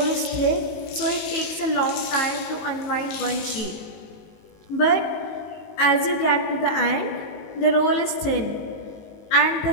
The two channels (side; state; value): right; late; 19 ms